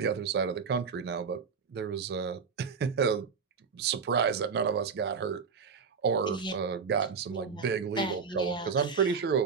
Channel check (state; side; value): quieter; left; 5.8 dB